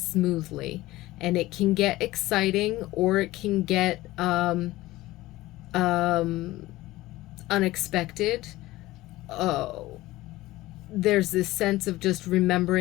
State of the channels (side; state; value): right; quieter; 17.7 dB